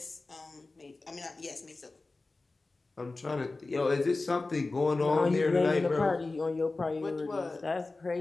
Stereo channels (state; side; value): quieter; right; 3.4 dB